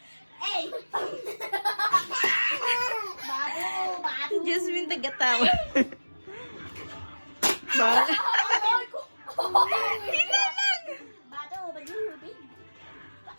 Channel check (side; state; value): both; inverted; correlation -1.00